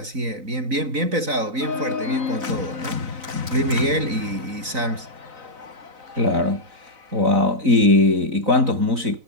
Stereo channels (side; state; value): left; late; 4.0 ms